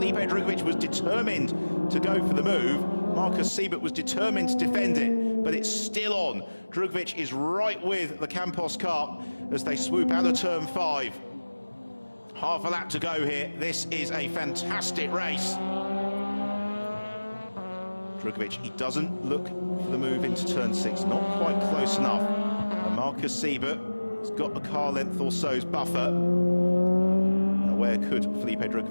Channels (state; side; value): inverted; both; correlation -1.00